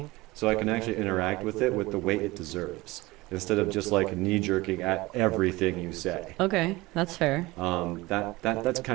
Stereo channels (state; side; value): quieter; left; 20.8 dB